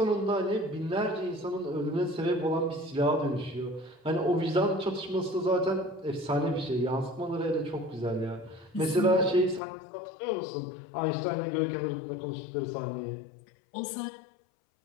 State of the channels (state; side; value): drops out; right; at 9.6 s